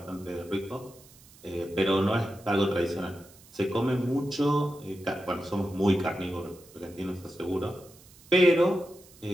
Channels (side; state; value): right; noise; hiss, 24 dB below the sound